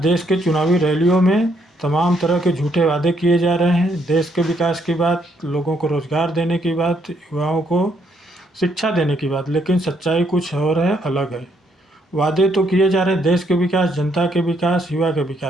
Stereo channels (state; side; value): normal; both; correlation 0.72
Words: देश के चुनावी रैलियों में तमाम तरह के झूठे वादे किए जा रहे हैं। देश के विकास की बात, लोगों को रोज़गार देने की बात, युवाओं को शिक्षा देने की बात, लेकिन सच्चाई कुछ और है, अलग है। वादे तो किए जा रहे हैं देश के विकास, जनता के विकास, युवा के